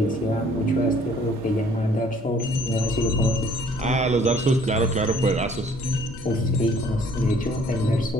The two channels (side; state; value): both; normal; correlation 0.59